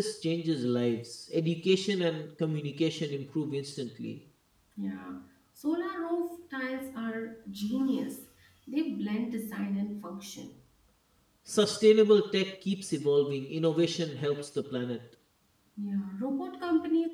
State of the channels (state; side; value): identical; both; correlation 1.00